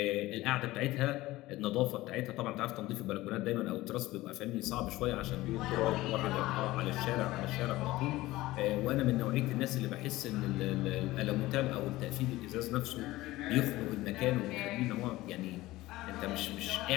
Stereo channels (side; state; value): right; quieter; 18.0 dB